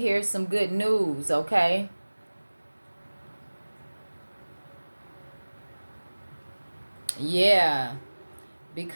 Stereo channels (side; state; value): both; inverted; correlation -1.00